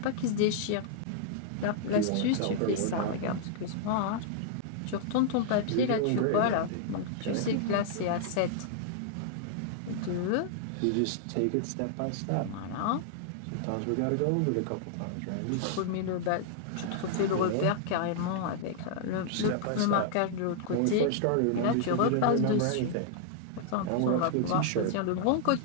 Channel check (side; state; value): both; different; correlation -0.01